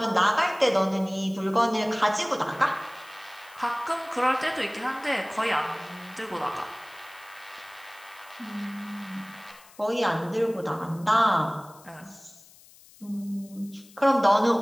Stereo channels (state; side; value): noise; left; hiss, 24 dB below the sound